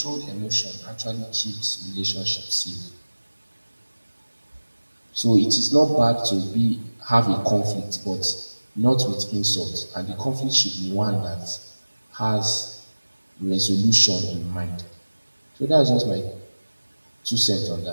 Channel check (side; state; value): both; inverted; correlation -1.00